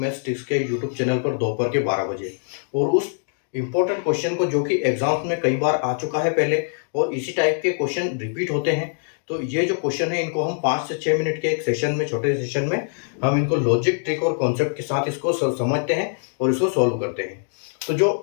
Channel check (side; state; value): right; silent; digital silence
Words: टिप्स के यूट्यूब चैनल पर दोपहर के 12 बजे। और उस इंपॉर्टेंट क्वेश्चन को जो कि एग्जाम्स में कई बार आ चुका है पहले और इसी टाइप के क्वेश्चन रिपीट होते हैं, तो ये जो क्वेश्चन है इनको हम 5 से 6 मिनट के एक सेशन में, छोटे सेशन में हम इनको लॉजिक, ट्रिक और कॉन्सेप्ट के साथ इसको समझते हैं और इसको सॉल्व करते हैं। तो जो